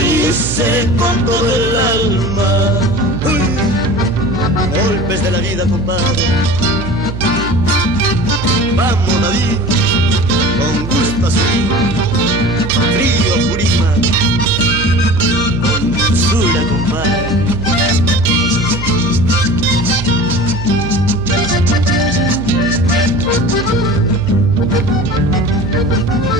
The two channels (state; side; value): noise; right; hum, 8 dB below the sound